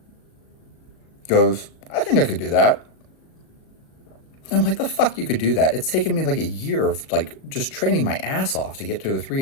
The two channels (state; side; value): late; right; 37 ms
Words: goes, I think I could do that. And I'm like, the fuck you could do that? It's taken me like a year of like just training my ass off to get to a